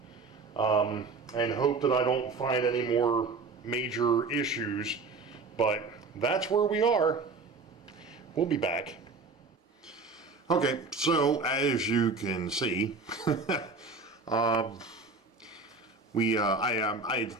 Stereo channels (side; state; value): left; quieter; 4.0 dB